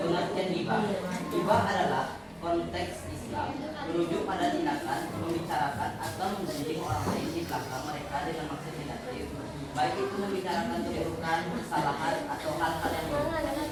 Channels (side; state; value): both; identical; correlation 1.00